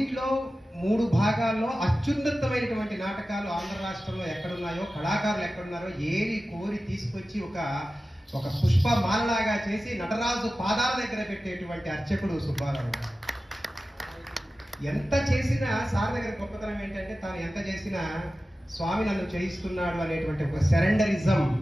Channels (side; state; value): both; normal; correlation 0.95